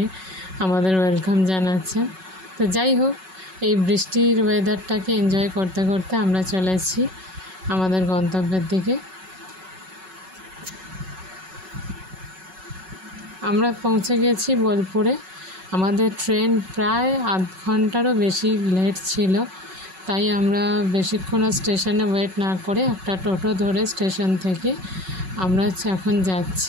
আমাদের ওয়েলকাম জানাচ্ছেন। তো যাই হোক, এই বৃষ্টির ওয়েদারটাকে এনজয় করতে করতে আমরা চলেছি আমাদের গন্তব্যের দিকে। আমরা পৌঁছে গেছি বোলপুরে। আমাদের ট্রেন প্রায় আধ ঘন্টারও বেশি লেট ছিল, তাই আমরা বেশিক্ষণ আর স্টেশনে ওয়েট না করে একটা টোটো ধরে স্টেশন থেকে আমরা এখন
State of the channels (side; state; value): left; late; 5.4 ms